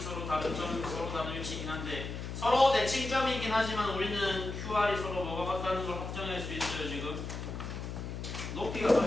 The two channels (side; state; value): left; noise; hum, 6 dB below the sound